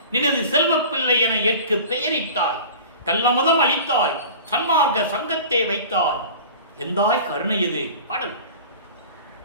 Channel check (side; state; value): both; inverted; correlation -0.39